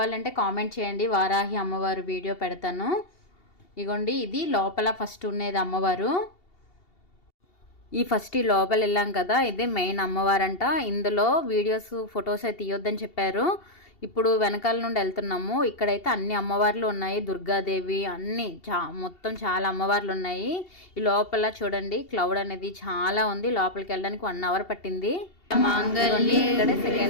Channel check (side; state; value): right; late; 2.7 ms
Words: కామెంట్ చేయండి, వారాహి అమ్మవారు వీడియో పెడతాను. ఇగోండి ఇది లోపల ఫస్ట్ ఉండేది అమ్మవారు. ఈ లోపల వెళ్ళాం కదా, ఇదే మెయిన్ అమ్మవారంట. ఇందులో వీడియోస్ ఫొటోస్ అయితే తీయొద్దని చెప్పారు. ఇప్పుడు వెనకాల నుండి వెళ్తున్నాము. ఇక్కడైతే అన్ని అమ్మవార్లు ఉన్నాయి, దుర్గాదేవి అన్ని మొత్తం చాలా అమ్మవార్లు ఉన్నాయి. ఈ లోపల చూడండి క్లౌడ్ అనేది చాలా ఉంది. లోపలికి వెళ్ళడానికి 1 అవర్ పట్టింది. ఇక్కడే